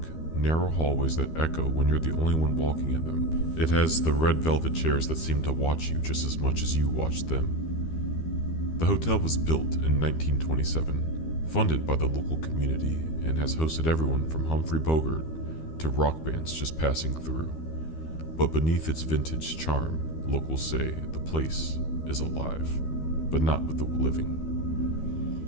narrow hallways that echo when you're the only one walking in them. It has the red velvet chairs that seem to watch you just as much as you watch them. The hotel was built in 1927, funded by the local community, and has hosted everyone from Humphrey Bogart to rock bands just passing through. But beneath its vintage charm, locals say the place is alive, but not with the living.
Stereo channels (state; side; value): late; right; 13 ms